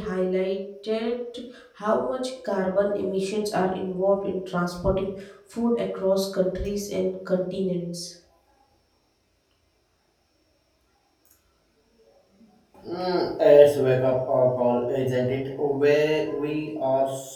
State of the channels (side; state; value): both; identical; correlation 1.00